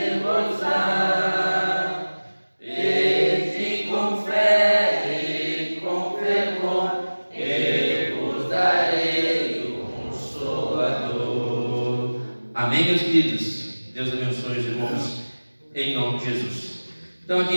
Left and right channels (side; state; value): both; inverted; correlation -1.00